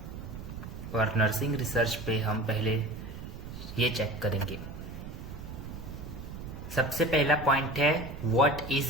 और नर्सिंग रिसर्च पे हम पहले ये चेक करेंगे। सबसे पहला पॉइंट है व्हाट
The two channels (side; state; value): right; noise; rumble, 10 dB below the sound